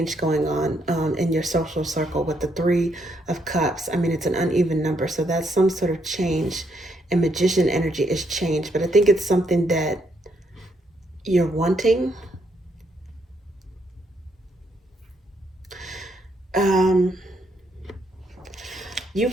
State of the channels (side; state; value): both; normal; correlation 0.75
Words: going on in your social circle with the Three of Cups. I mean, it's an uneven number, so that's some sort of change. And Magician energy is change, but I think it's something that you're wanting. You